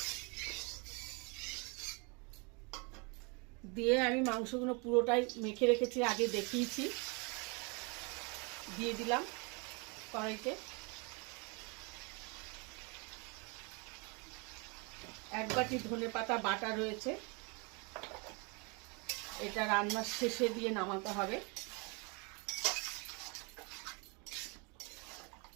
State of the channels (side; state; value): left; quieter; 31.7 dB